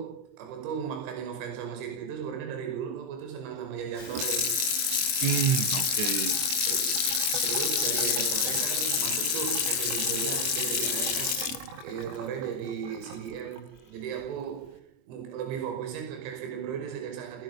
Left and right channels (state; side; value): late; left; 23 ms